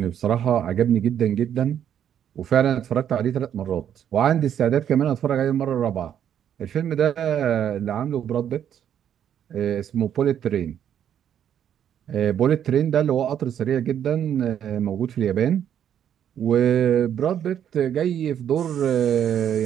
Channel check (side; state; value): left; quieter; 9.5 dB